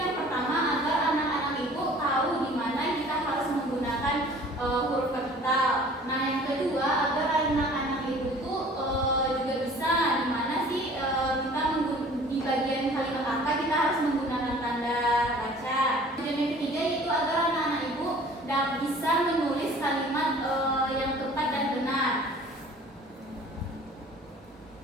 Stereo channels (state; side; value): normal; both; correlation 0.49